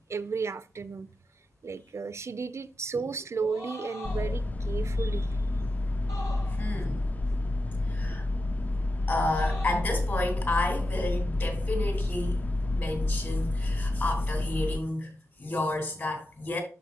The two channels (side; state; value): both; normal; correlation 0.89